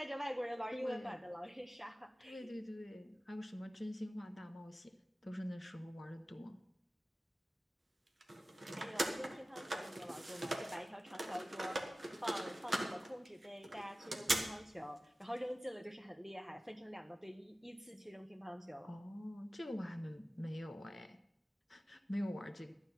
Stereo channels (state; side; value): normal; both; correlation 0.96